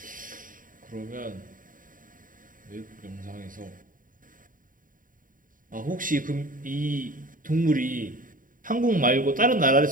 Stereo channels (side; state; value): left; late; 0.39 ms